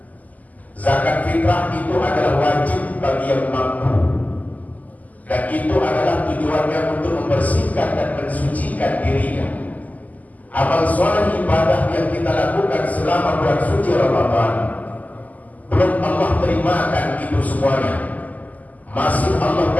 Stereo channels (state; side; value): late; right; 0.078 ms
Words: Zakat fitrah itu adalah wajib bagi yang mampu, dan itu adalah tujuannya untuk membersihkan dan mensucikan dirinya. Amal soleh ibadah yang kita lakukan selama bulan suci Ramadan belum Allah terimakan itu semuanya. Masih Allah